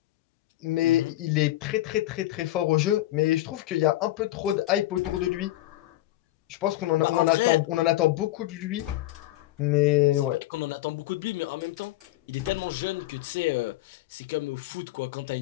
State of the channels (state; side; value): quieter; right; 15.8 dB